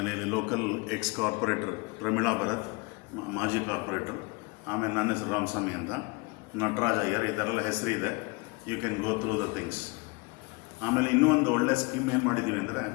ಇಲ್ಲಿ local ex corporator Pramila Bharat, ಮಾಜಿ ಕಾರ್ಪೊರೇಟರ್, ಆಮೇಲೆ ನನ್ನ ಹೆಸರು ರಾಮಸ್ವಾಮಿ ಅಂತ, ನಟರಾಜ್ ಅಯ್ಯರ್, ಈ ಥರ ಎಲ್ಲ ಹೆಸರಿದೆ. You can go through the things. ಆಮೇಲೆ ಇನ್ನೂ ಒಂದು ಒಳ್ಳೆ ಸ್ಕೀಮ್ ಏನು ಮಾಡಿದ್ದೀವಿ ಅಂದರೆ,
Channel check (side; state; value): right; quieter; 28.0 dB